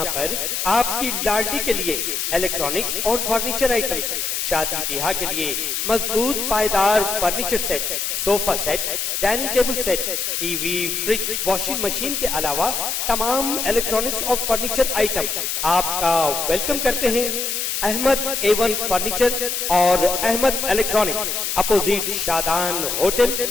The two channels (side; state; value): left; noise; hiss, 1 dB below the sound